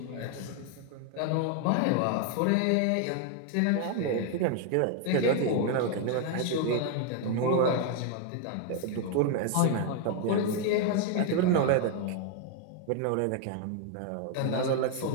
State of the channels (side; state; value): both; different; correlation 0.00